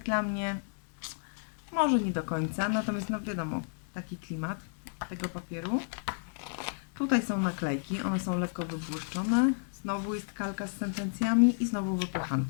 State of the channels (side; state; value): right; silent; digital silence